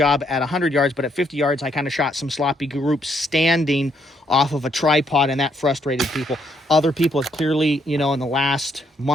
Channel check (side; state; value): both; normal; correlation 0.72